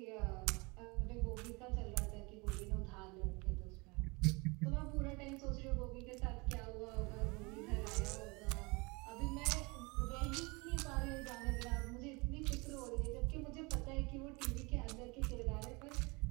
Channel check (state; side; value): quieter; left; 27.1 dB